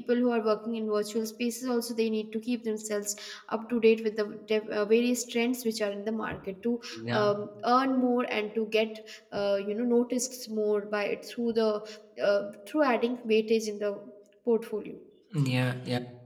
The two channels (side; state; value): both; identical; correlation 1.00